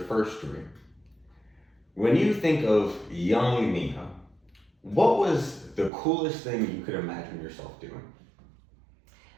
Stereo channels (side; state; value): left; drops out; at 5.9 s